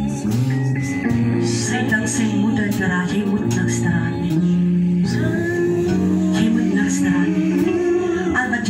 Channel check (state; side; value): identical; both; correlation 1.00